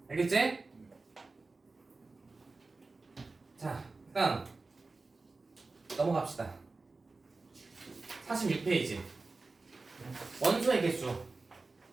알겠지? 자, 일단 넘어갑시다. 46페이지. 원소의 개수.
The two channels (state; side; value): quieter; left; 3.7 dB